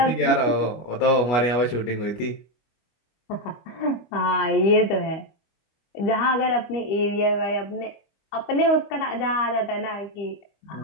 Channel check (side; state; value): right; late; 25 ms